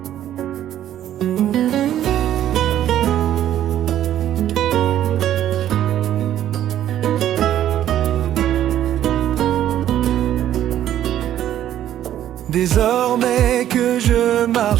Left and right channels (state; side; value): quieter; left; 11.7 dB